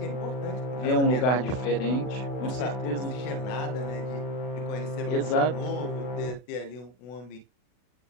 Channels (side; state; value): right; late; 40 ms